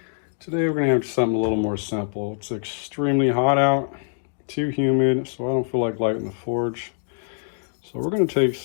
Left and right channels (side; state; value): right; silent; digital silence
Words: Today we're going to have something a little more simple. It's extremely hot out, too humid, so I don't feel like lighting the forge. So we're going to take